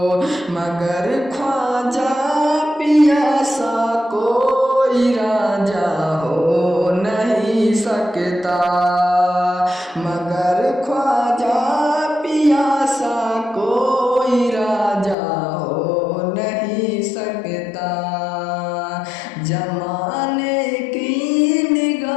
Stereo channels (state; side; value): drops out; right; at 15.2 s